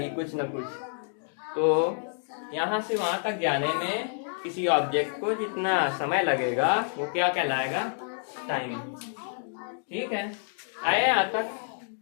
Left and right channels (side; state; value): right; silent; digital silence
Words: कुछ ना कुछ। तो यहाँ से वहां तक जाने में किसी ऑब्जेक्ट को जितना समय लगेगा वो क्या कहलाएगा? टाइम, ठीक है। आए यहाँ तक?